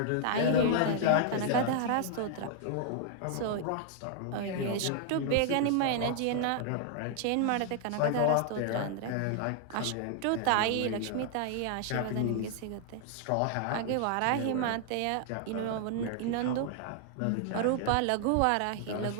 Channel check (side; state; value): both; different; correlation 0.00